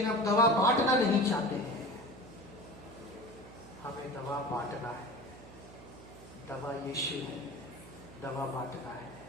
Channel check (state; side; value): noise; right; hum, 18 dB below the sound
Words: आप दवा बांटना नहीं चाहते हैं। हमें दवा बांटना है। दवा यीशु है, दवा बांटना है।